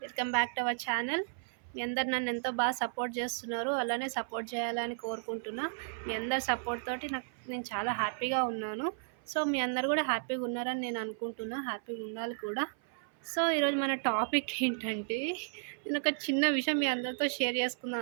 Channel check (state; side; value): silent; left; 55 dB below the other